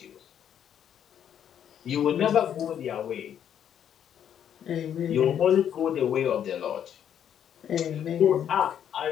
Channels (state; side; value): quieter; right; 9.3 dB